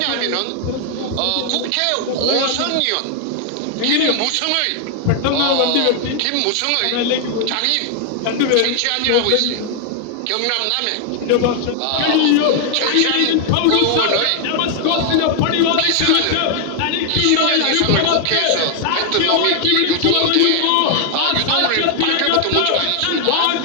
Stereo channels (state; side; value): different; both; correlation 0.00